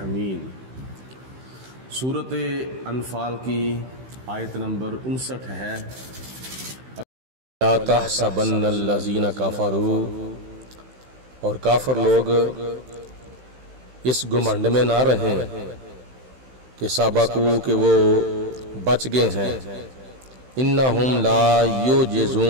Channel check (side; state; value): left; late; 16 ms